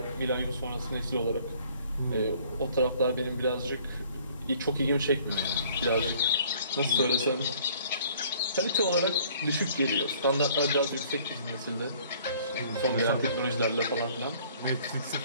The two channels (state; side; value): inverted; both; correlation -0.56